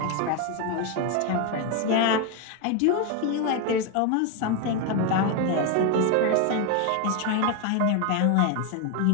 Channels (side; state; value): both; different; correlation 0.01